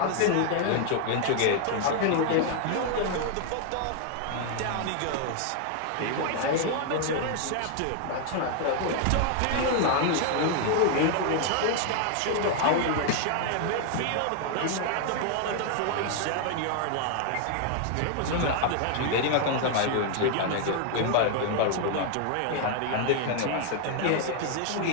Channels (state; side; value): different; both; correlation 0.00